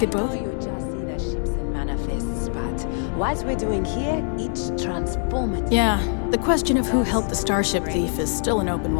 both? You just see the ships and manifests, but what we're doing here, it's transformative. Yeah, the question of who helped the starship thief is still an open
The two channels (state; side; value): silent; right; 57 dB below the other